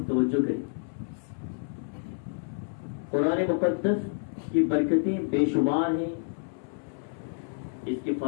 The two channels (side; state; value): right; silent; 59 dB below the other